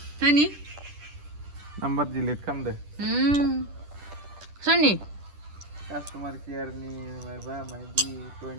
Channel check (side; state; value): left; late; 10 ms